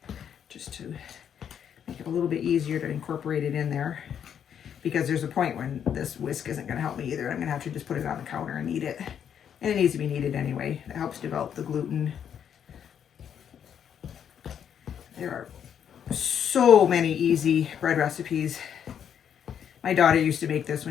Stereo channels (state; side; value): quieter; right; 8.6 dB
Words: just to make it a little bit easier to incorporate it in there. Because there's a point when this whisk isn't going to help me either. I'm going to have to just put it on the counter and knead it. And it needs to be kneaded anyway. It helps develop the gluten. There are so many easy bread recipes. My daughter used to make this